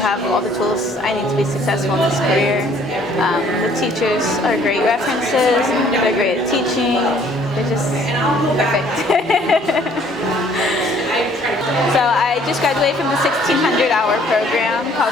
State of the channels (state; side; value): normal; both; correlation 0.59